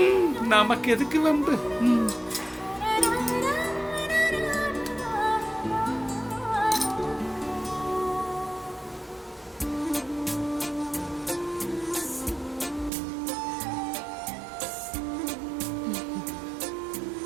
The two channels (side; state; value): left; drops out; at 12.9 s